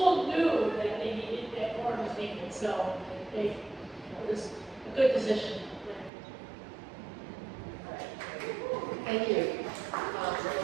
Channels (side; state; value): left; drops out; at 6.1 s